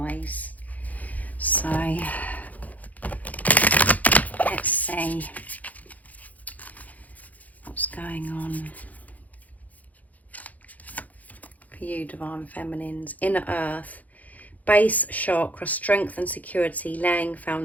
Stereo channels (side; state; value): right; late; 0.077 ms